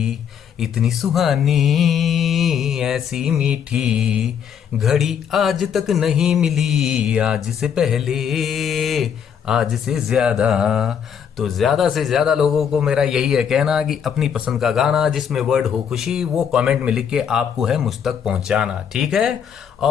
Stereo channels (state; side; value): quieter; right; 7.9 dB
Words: इतनी सुहानी ऐसी मीठी घड़ी आज तक नहीं मिली, आज से पहले आज से ज्यादा। तो ज्यादा से ज्यादा लोगों को मेरा यही है कहना कि अपनी पसंद का गाना जिसमें वर्ड हो खुशी वो कमेंट में लिख के आपको है मुझ तक पहुंचाना, ठीक है।